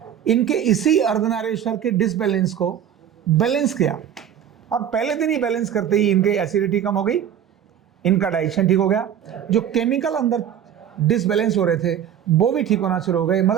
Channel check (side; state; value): left; quieter; 9.5 dB